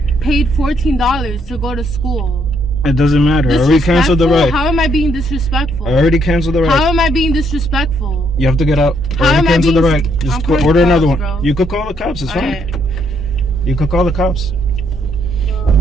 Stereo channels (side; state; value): both; normal; correlation 0.72